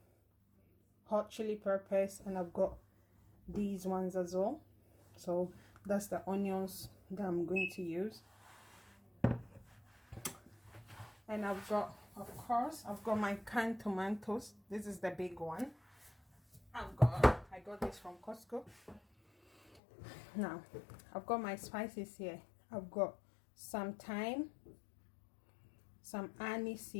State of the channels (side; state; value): right; drops out; at 19.8 s